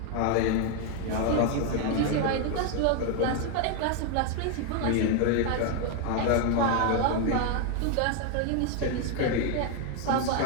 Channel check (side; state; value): both; different; correlation 0.01